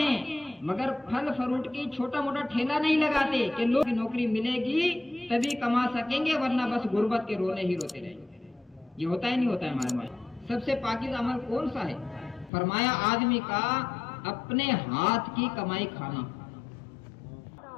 مگر پھل فروٹ کی چھوٹا موٹا ٹھیلا نہیں لگاتے کہ لوگ نوکری ملے گی تبھی کما سکیں گے ورنہ بس غربت کے رونے ہی روتے رہیں گے. یہ ہوتا ہی نہیں ہوتا ہے ہمارے ماں. سب سے پاکیزہ عمل کون سا ہے؟ فرمایا آدمی کا اپنے ہاتھ کی کمائی کھانا.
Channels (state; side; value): drops out; right; at 12.5 s